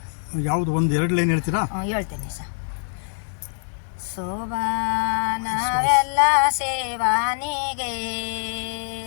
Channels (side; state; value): right; silent; digital silence